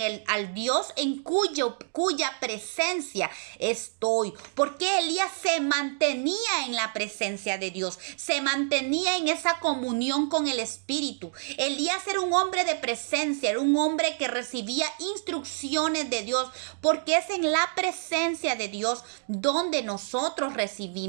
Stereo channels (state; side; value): silent; left; digital silence